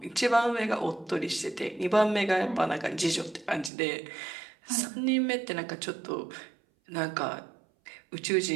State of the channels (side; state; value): left; drops out; at 3.7 s